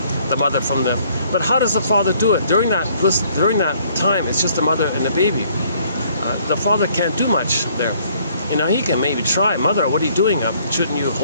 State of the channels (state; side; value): inverted; both; correlation -0.62